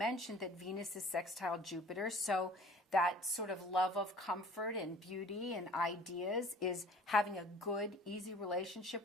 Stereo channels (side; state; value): both; normal; correlation 0.49